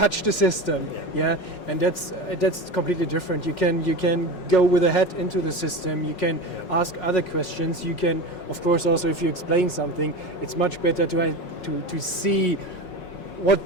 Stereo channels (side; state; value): right; late; 5.5 ms